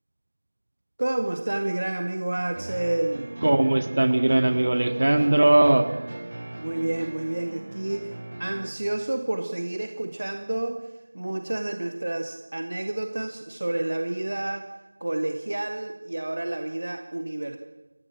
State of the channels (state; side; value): inverted; both; correlation -1.00